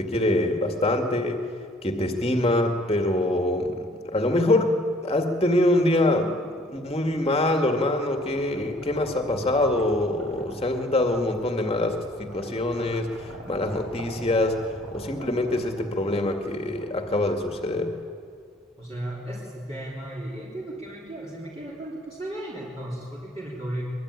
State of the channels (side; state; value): both; normal; correlation 0.58